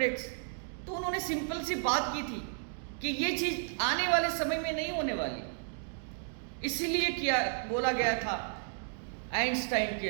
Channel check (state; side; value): silent; left; digital silence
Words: तो उन्होंने सिंपल सी बात की थी कि ये चीज आने वाले समय में नहीं होने वाली, इसीलिए क्या बोला गया था आइंस्टाइन